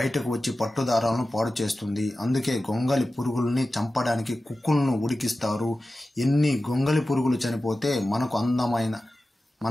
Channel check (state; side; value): normal; both; correlation 0.94